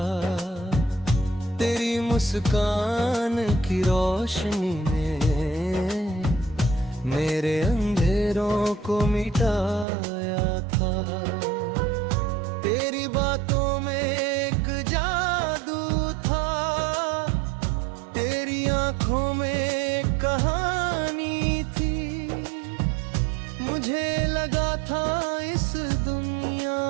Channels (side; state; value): left; drops out; at 9.9 s